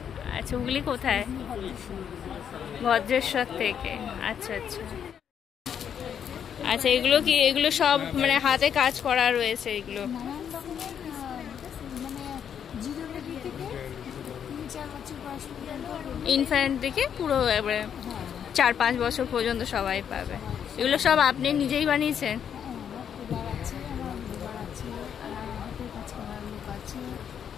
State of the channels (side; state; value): right; quieter; 8.3 dB